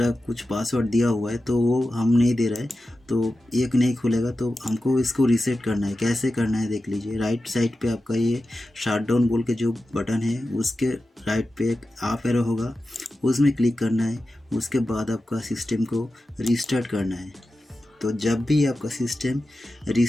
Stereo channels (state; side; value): normal; both; correlation 0.93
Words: पासवर्ड दिया हुआ है तो वो हम नहीं दे रहा है, तो एक नहीं खुलेगा, तो हमको इसको रीसेट करना है। कैसे करना है देख लीजिए। राइट साइड पे आपका ये शटडाउन बोल के जो बटन है उसके राइट पे एक अप एरो होगा, उसमें क्लिक करना है। उसके बाद आपका सिस्टम को रीस्टार्ट करना है। तो जब भी आपका सिस्टम